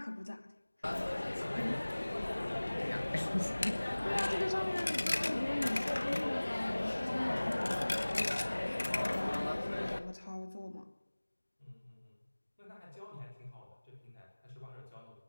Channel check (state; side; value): inverted; both; correlation -1.00